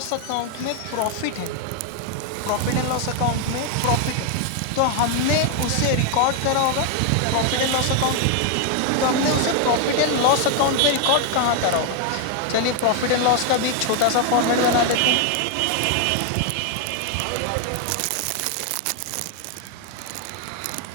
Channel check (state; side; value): different; both; correlation 0.00